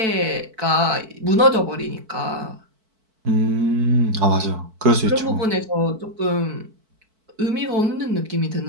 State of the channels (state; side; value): late; left; 4.5 ms